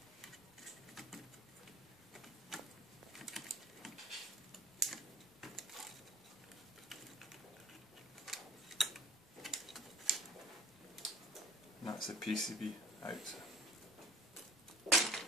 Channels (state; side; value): normal; both; correlation 0.46